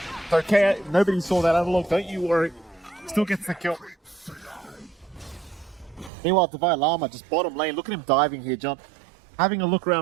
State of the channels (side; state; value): left; drops out; at 6.1 s